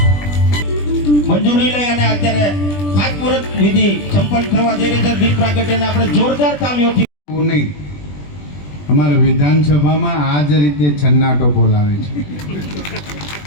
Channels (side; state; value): right; late; 20 ms